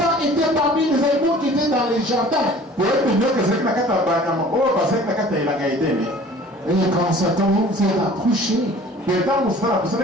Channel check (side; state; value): both; normal; correlation 0.47